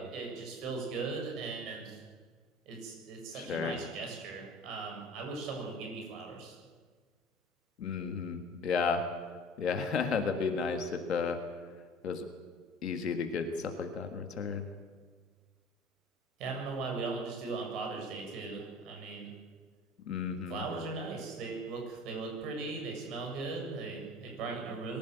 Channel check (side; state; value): both; normal; correlation 0.43